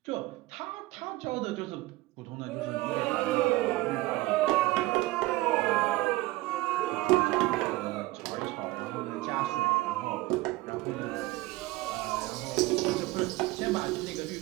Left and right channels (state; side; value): quieter; left; 19.4 dB